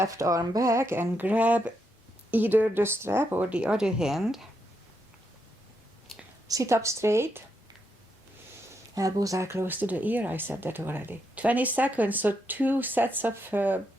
arm back and grab either the strap or the other hand. Sit up straight. Elbows are close to the ear. I said that already. 20 seconds, so 2 sets of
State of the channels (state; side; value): normal; both; correlation 0.81